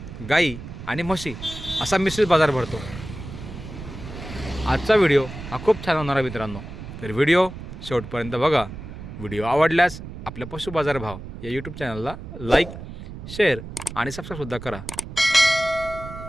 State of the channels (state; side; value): noise; right; rumble, 11 dB below the sound